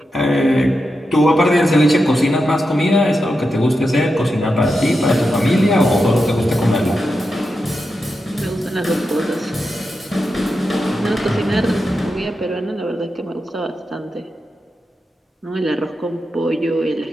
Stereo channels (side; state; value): both; normal; correlation 0.88